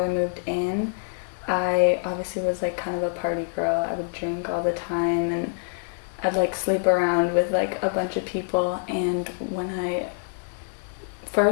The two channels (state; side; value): silent; right; digital silence